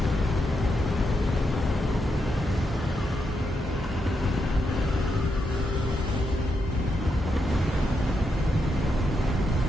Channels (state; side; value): normal; both; correlation 0.83